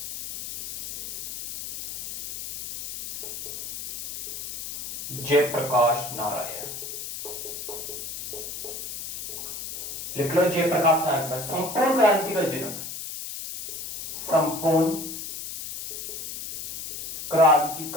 जयप्रकाश नारायण लिख लो, जयप्रकाश नारायण। संपूर्ण क्रांति का जनक, संपूर्ण क्रांति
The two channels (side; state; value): left; noise; hiss, 8 dB below the sound